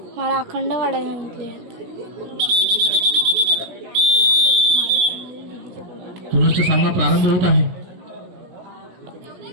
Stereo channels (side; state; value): left; late; 17 ms